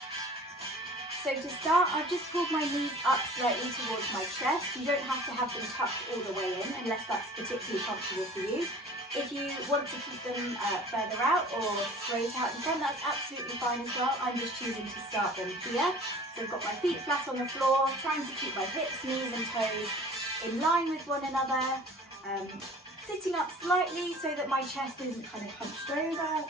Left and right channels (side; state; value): both; normal; correlation 0.46